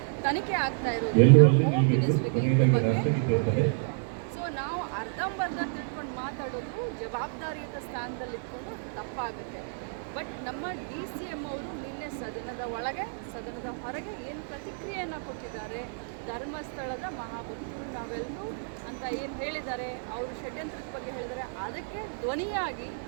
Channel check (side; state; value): left; silent; 58 dB below the other